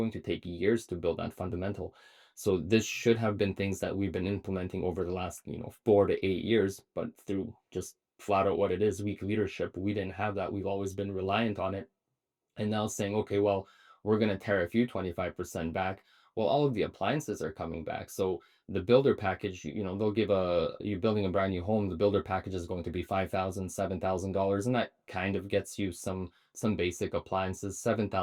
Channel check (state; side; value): identical; both; correlation 1.00